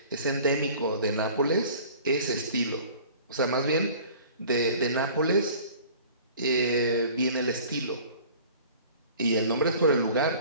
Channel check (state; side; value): inverted; both; correlation -0.47